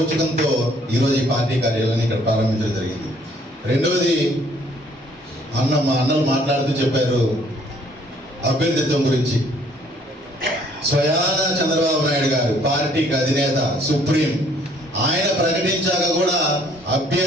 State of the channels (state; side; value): normal; both; correlation 0.62